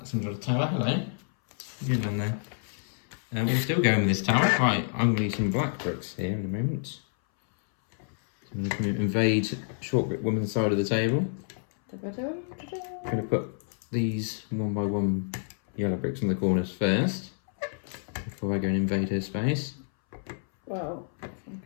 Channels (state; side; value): silent; right; 59 dB below the other